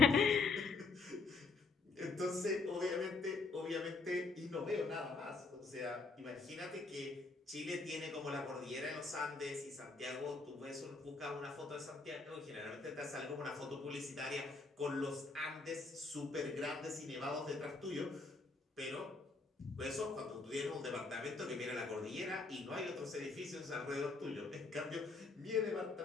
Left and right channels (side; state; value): right; quieter; 4.0 dB